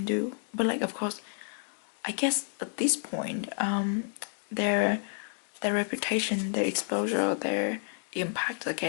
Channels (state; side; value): silent; right; 58 dB below the other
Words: do. But like, of course, I guess at this point, their reputation, their exposure, their impact are